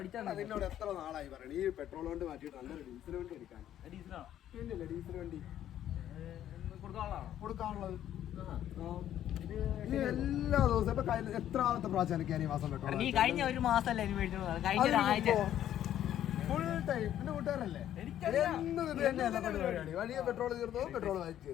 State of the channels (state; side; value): quieter; right; 11.4 dB